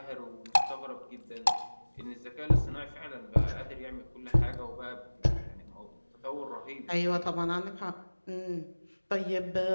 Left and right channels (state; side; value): inverted; both; correlation -1.00